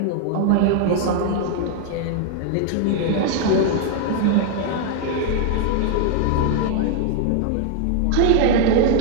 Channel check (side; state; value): both; different; correlation 0.00